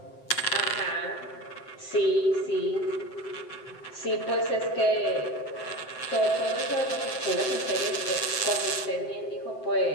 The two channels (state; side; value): late; right; 7.7 ms